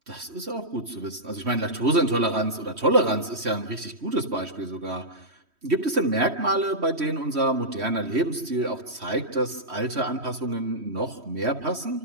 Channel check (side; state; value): left; late; 3.1 ms